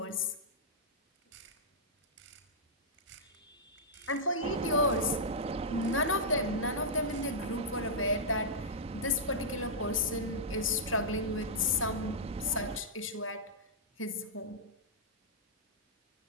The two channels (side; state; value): both; normal; correlation -0.10